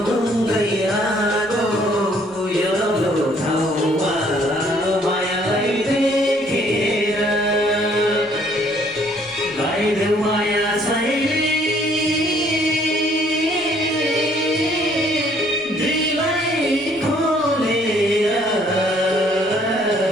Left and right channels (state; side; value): normal; both; correlation 0.62